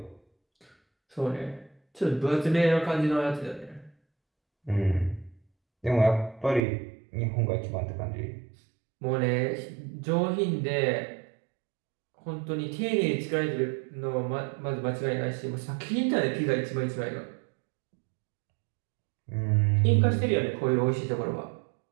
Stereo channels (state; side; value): drops out; left; at 6.7 s